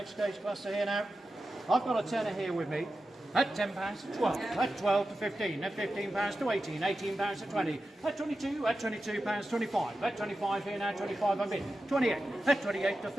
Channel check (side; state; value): both; normal; correlation 0.92